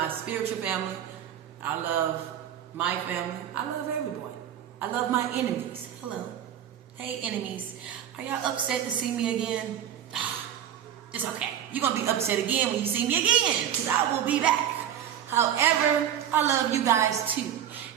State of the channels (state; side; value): quieter; left; 10.1 dB